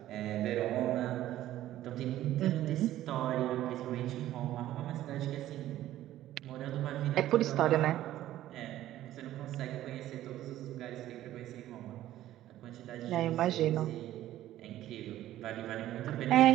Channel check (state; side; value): quieter; left; 13.7 dB